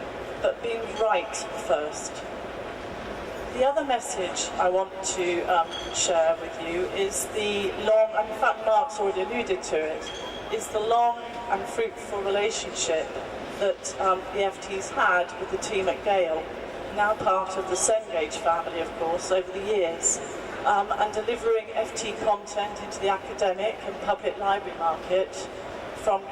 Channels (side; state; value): both; identical; correlation 1.00